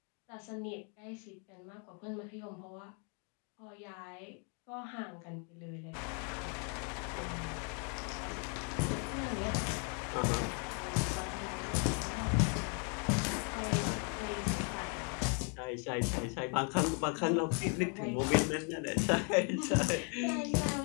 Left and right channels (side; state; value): right; quieter; 39.3 dB